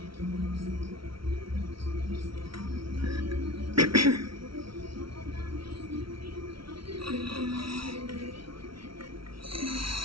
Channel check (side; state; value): left; late; 0.74 ms